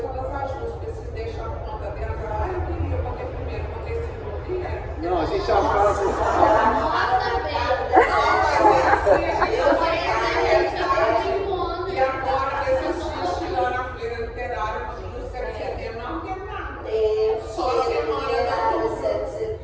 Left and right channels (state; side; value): identical; both; correlation 1.00